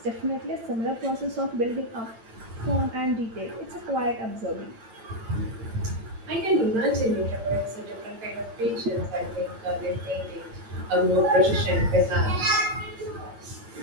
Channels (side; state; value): left; late; 8.9 ms